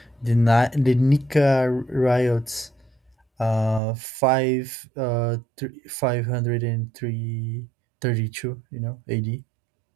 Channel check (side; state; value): left; drops out; at 3.8 s